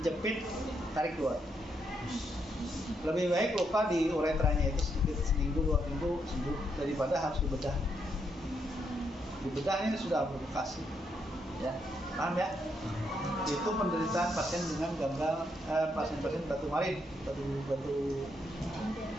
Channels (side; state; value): both; normal; correlation 0.78